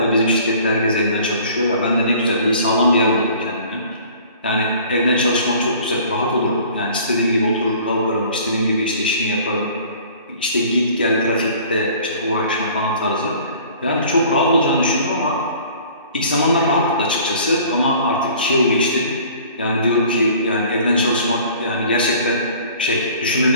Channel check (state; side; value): inverted; both; correlation -0.50